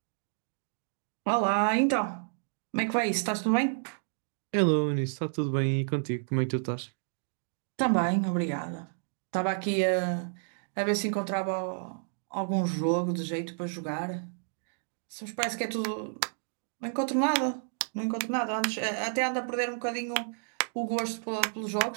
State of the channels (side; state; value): left; silent; digital silence